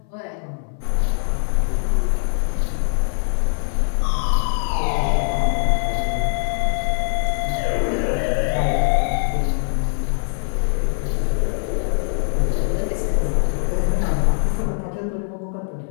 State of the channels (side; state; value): right; silent; 61 dB below the other